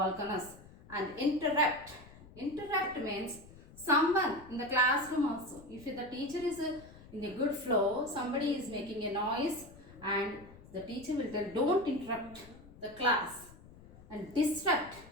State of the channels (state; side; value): noise; left; rumble, 20 dB below the sound